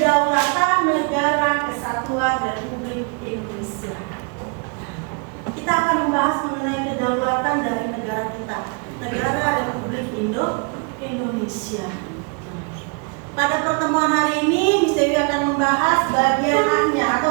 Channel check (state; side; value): quieter; left; 34.9 dB